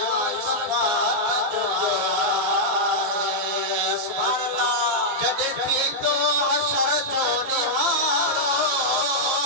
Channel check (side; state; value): left; late; 15 ms